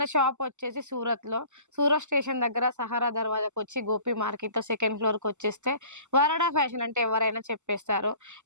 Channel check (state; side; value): late; left; 0.84 ms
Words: షాప్ వచ్చేసి సూరత్ స్టేషన్ దగ్గర సహారా దర్వాజాకి వచ్చి గోపి మార్కెట్ లో సెకండ్ ఫ్లోర్ కి వచ్చేస్తే వరాడా ఫ్యాషన్ అంటే ఎవరైనా చెప్పేస్తారు.